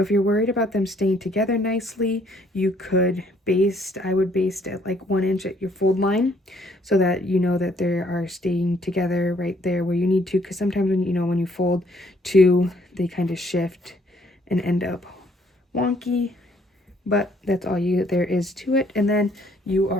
you're worried about them staying together nicely, you could baste. I would baste at like 1 inch at your fold line so that you know that they are staying together right there where you need to, because sometimes when you fold two, they kind of shift and end up wonky. But that's all there is to it, and then you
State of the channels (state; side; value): normal; both; correlation 0.65